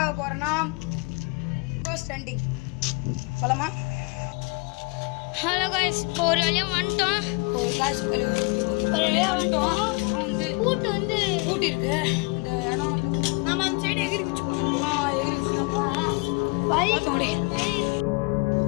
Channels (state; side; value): quieter; right; 30.8 dB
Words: போறோம்னா கோஸ்ட் ஹண்டிங். போலாமா? ஹலோ गाइस, இப்போ ஒரு வழியா வந்துட்டோம். ஒரு வழியா வந்துட்டோம். கூட்டி இருக்கு. இந்த இடம் நம்ம அந்த சைடு எகிரி குச்சி போறோம். எகிரி குச்சி போறோம். பாத்தோடி.